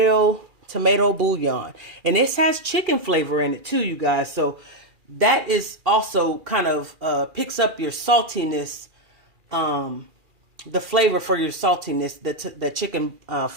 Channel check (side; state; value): left; late; 2.4 ms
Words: bouillon. And this has chicken flavor in it too, you guys. So that is also kind of picks up your saltiness, the flavor for your saltiness, the chicken